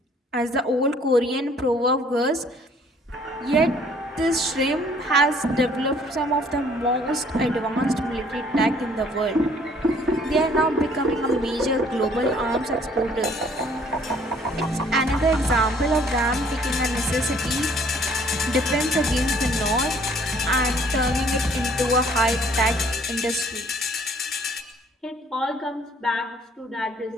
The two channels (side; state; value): both; normal; correlation 0.59